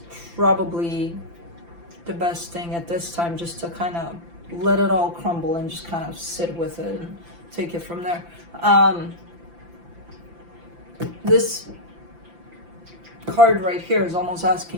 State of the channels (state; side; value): late; left; 5.9 ms